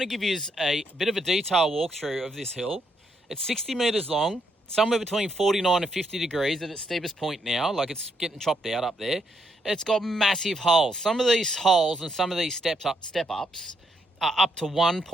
to give you a bit of a detailed walkthrough of this hill. It's 60 metres long, somewhere between 49 and 50 degrees at its steepest point now, like it's getting chopped out up there. It's got massive holes. Some of these holes and some of these step-ups are up to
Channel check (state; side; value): normal; both; correlation 0.75